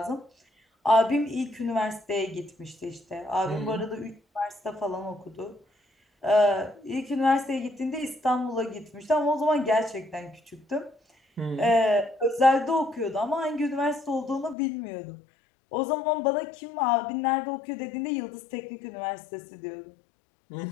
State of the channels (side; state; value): right; drops out; at 14.6 s